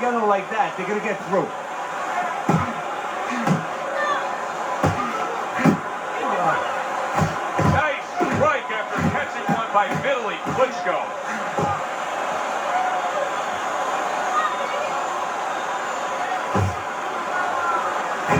like that, they're going to get through. Nice strike after catching one by Vitali Klitchco.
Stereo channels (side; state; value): both; identical; correlation 1.00